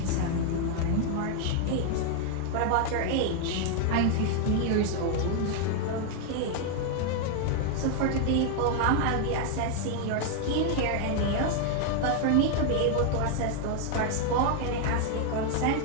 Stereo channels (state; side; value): different; both; correlation 0.00